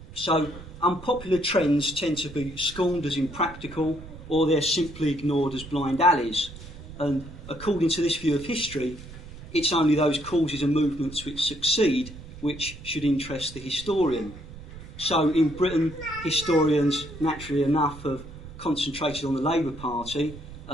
So unpopular trends tend to be scorned as impractical, or they're simply ignored as blind alleys. And according to this view of history, it's only those causes and movements which succeed which should interest the historian. So in Britain, historians, naturally enough, have concentrated on the Labour Party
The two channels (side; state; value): right; noise; rumble, 15 dB below the sound